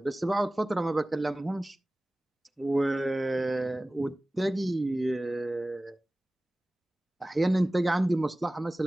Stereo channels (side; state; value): both; normal; correlation 0.98